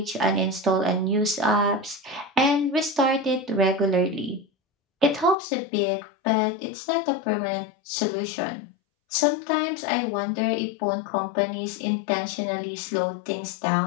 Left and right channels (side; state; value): right; drops out; at 5.4 s